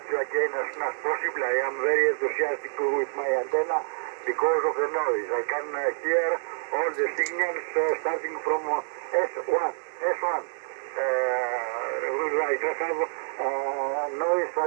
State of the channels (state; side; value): silent; left; 57 dB below the other